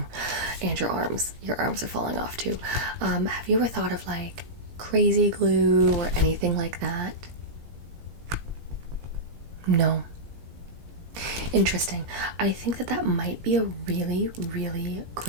And your arms. Your arms are falling off too. Have you ever thought of like crazy glue or anything like that? No. Interesting. I think that might be a really, really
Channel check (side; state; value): left; late; 17 ms